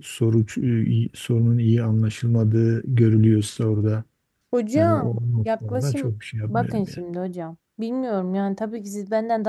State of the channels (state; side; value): identical; both; correlation 1.00